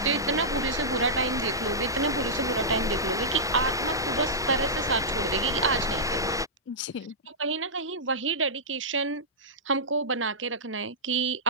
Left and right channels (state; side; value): normal; both; correlation -0.13